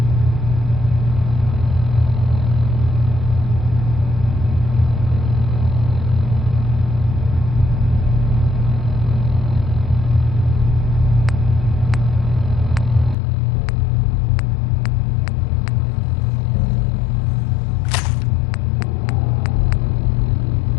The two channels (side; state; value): right; drops out; at 13.2 s